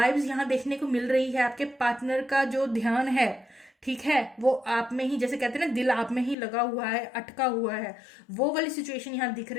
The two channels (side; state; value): right; drops out; at 6.4 s